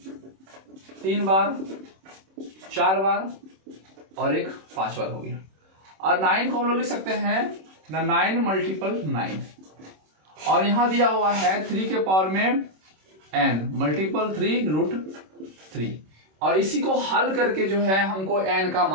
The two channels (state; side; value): late; left; 26 ms